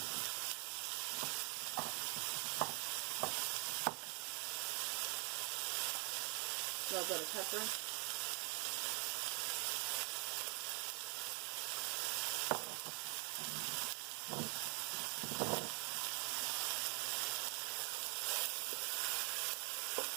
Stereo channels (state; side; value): quieter; left; 35.3 dB